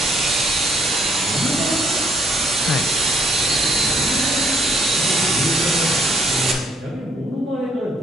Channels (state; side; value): normal; both; correlation 0.66